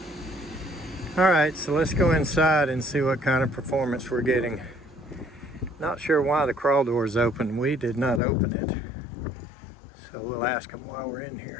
All right, so let's go inside and see what kind of performance we're getting. Not sure why the crawl door is open. We did not open it. So we'll ask them while we're in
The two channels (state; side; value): drops out; right; at 8.2 s